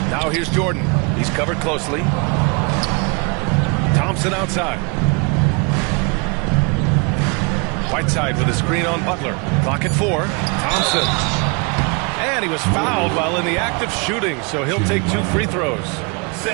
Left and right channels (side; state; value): left; quieter; 32.2 dB